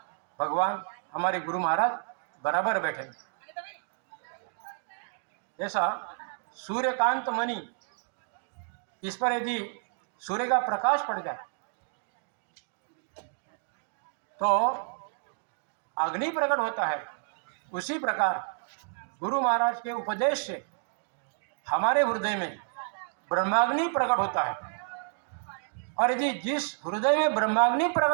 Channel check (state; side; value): silent; left; digital silence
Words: भगवान, हमारे गुरु महाराज बराबर बैठे। जैसा सूर्यकांत मणि, इस पर यदि सूर्य का प्रकाश पड़ जाए तो अग्नि प्रकट होता है, उसी प्रकार गुरु महाराज के उपदेश से हमारे हृदय में ब्रह्माग्नि प्रकट होता है। और यदि जिस हृदय में ब्रह्माग्नि